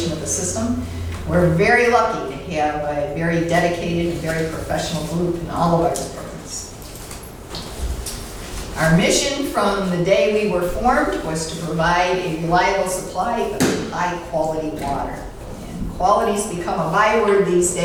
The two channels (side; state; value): both; identical; correlation 1.00